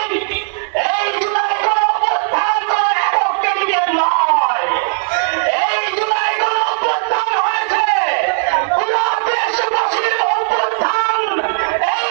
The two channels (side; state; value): left; silent; digital silence